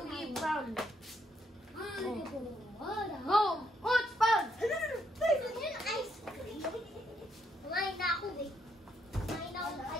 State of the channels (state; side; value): normal; both; correlation 0.74